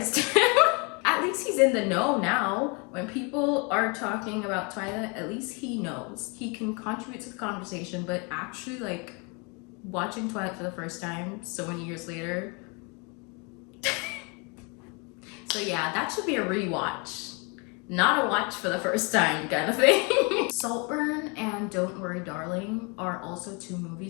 him. At least he's in the know now. When people are talking about Twilight, at least he knows. He can contribute to the conversation, but actually, like, watching Twilight for the first time so many years later. So yeah, that should be a rewatch. Not a watch for the first time kind of thing. Saltburn and Don't Worry Darling are also two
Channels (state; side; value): quieter; right; 31.8 dB